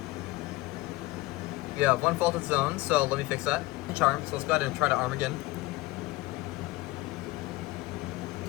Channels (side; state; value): right; quieter; 20.1 dB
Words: We have one faulted zone, so let me fix that. Charm, so let's go ahead and try to arm again.